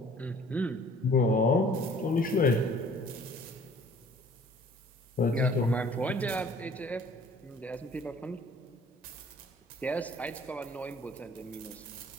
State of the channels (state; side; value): normal; both; correlation 0.53